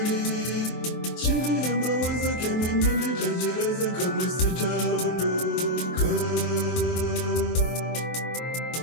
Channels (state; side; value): late; right; 23 ms